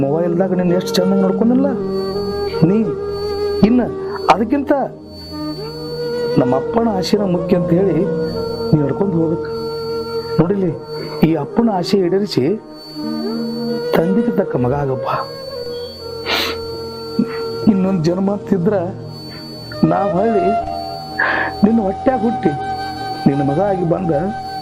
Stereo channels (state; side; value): identical; both; correlation 1.00